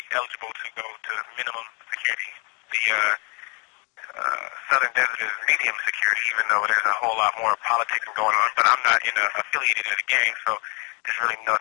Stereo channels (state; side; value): quieter; right; 32.9 dB